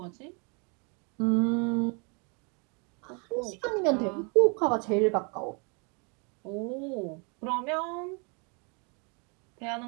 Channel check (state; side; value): quieter; left; 34.1 dB